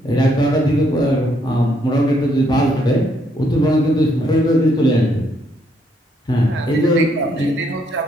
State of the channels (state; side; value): normal; both; correlation 0.72